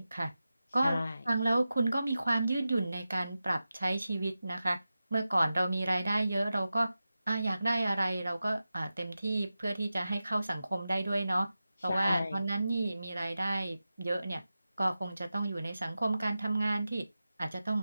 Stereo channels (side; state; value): both; inverted; correlation -0.93